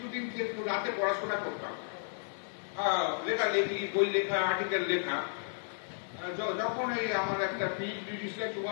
যে রাতে পড়াশোনা করতাম, লেখালেখি, বই লেখা, আর্টিকেল লেখা, যখন এই আমার একটা পিএইচডি রিসার্চ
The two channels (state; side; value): silent; right; digital silence